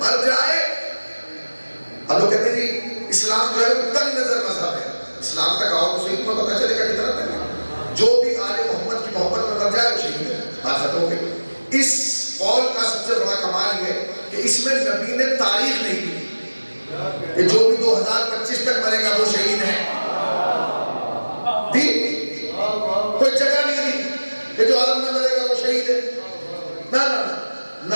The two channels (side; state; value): both; inverted; correlation -1.00